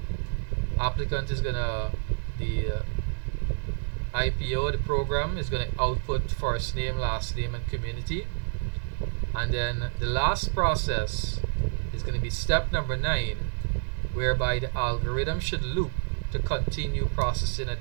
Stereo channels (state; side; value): silent; left; digital silence